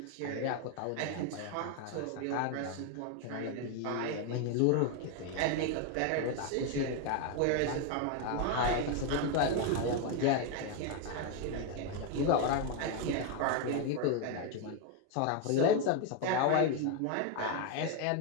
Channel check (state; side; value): different; both; correlation 0.01